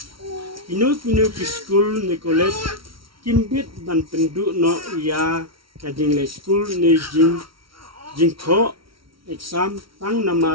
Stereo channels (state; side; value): late; left; 0.75 ms